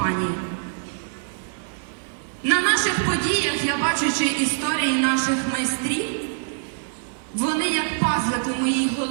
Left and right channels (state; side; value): silent; left; digital silence